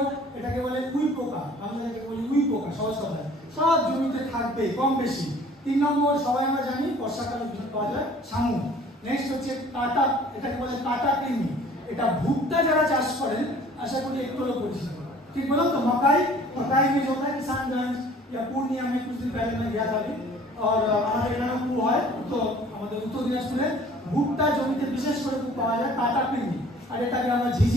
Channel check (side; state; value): both; normal; correlation 0.51